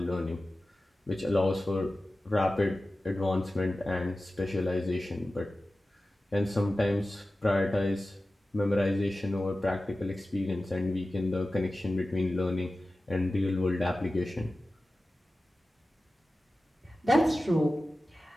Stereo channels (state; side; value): normal; both; correlation 0.95